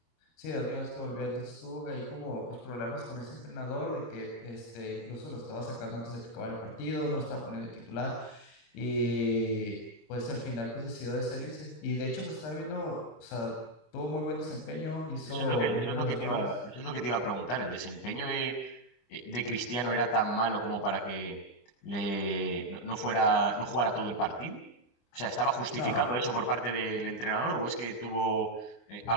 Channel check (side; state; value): right; late; 25 ms